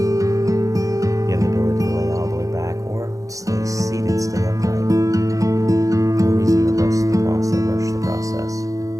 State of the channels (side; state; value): left; late; 0.16 ms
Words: You have the ability to lay all the way back or stay seated, stay upright. No reason to rush the process.